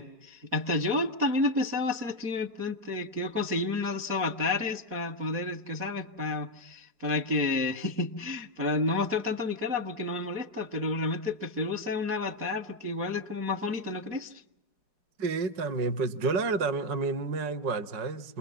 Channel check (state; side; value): late; left; 4.8 ms